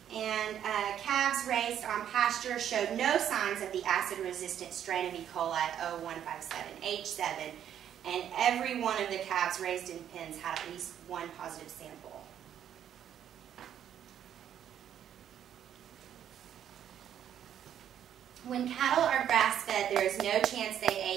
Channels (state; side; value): quieter; left; 9.8 dB